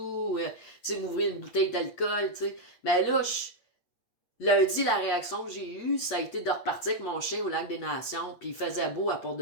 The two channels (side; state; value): right; late; 8.6 ms